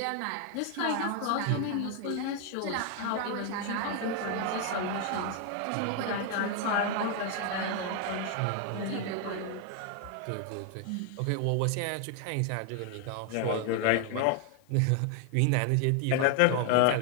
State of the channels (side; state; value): both; different; correlation 0.00